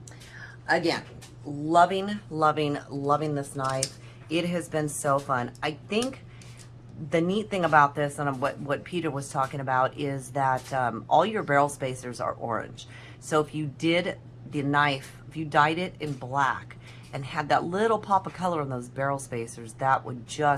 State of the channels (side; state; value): both; identical; correlation 1.00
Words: Again, loving, loving, loving this knife. It has been so fun. I think the neat thing about this, and what Peter was talking about, is that all your barrel spacers are orange. So if you did the knife, if you dyed it in black and had that little pop of color on those barrel spacers, that would